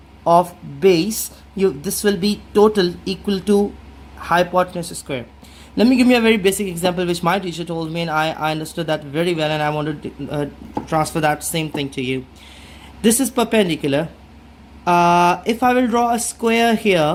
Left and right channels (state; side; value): identical; both; correlation 1.00